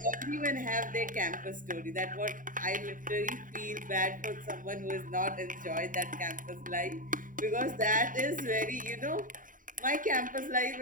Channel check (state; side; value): late; left; 0.39 ms